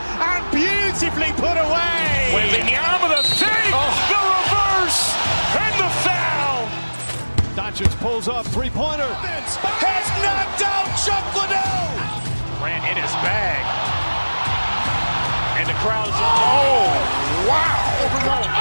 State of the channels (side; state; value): both; inverted; correlation -1.00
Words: beautifully put away. Wembanyama the save, the reverse, and the foul. Doncic pulls up, three-pointer. Has knocked out Chuck Liddell. Ran in his bag. And the crowd's